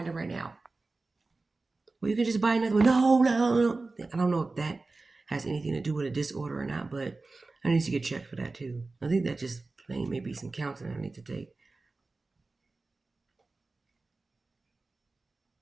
it right now. Well, you can just buy another one. No, no, no. I don't know if that has anything to do with a disorder or not, but I need to get checked for that too. I think that just plain maybe some counseling I need to take.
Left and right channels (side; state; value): left; quieter; 3.5 dB